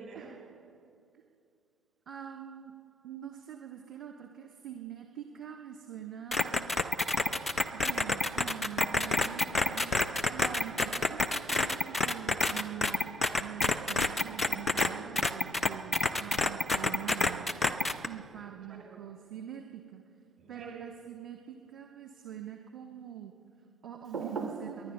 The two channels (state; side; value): normal; both; correlation 0.72